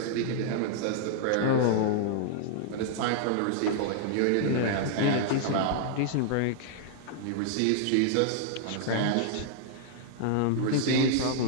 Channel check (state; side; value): different; both; correlation -0.01